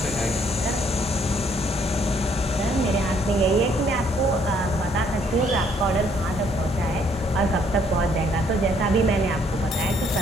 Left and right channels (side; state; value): both; normal; correlation 0.66